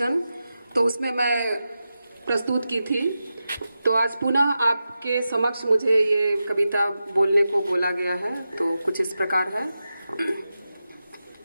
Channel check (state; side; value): inverted; both; correlation -0.91